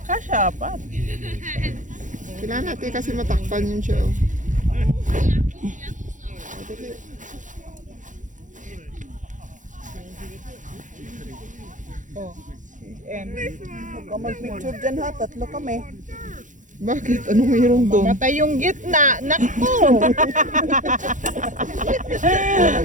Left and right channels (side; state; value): left; late; 0.37 ms